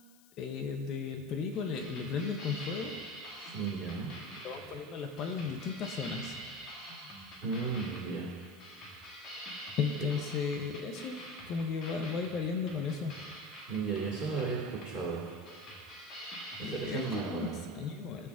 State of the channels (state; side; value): noise; left; hiss, 26 dB below the sound